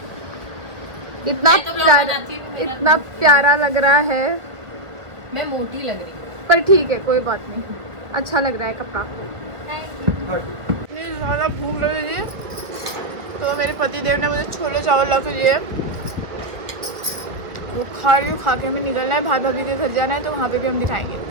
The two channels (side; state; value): left; late; 1.6 ms